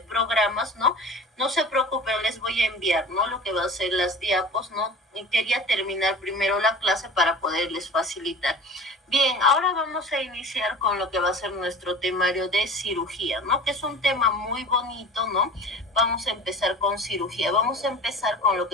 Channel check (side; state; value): both; normal; correlation 0.39